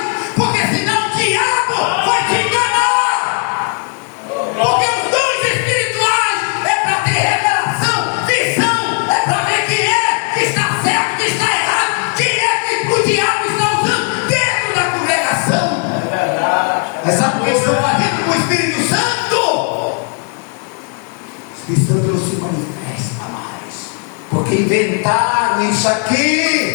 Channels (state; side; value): quieter; right; 39.9 dB